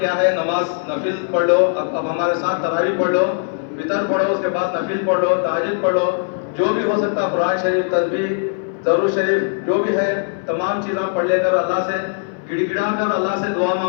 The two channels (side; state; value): right; silent; 66 dB below the other